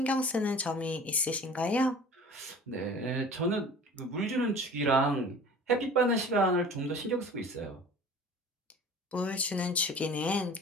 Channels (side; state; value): both; normal; correlation 0.43